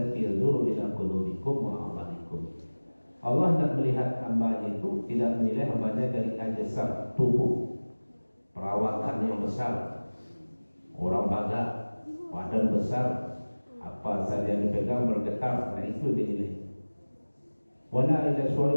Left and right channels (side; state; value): both; inverted; correlation -1.00